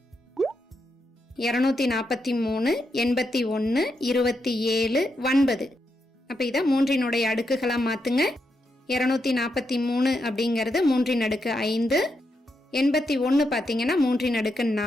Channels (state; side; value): normal; both; correlation 0.83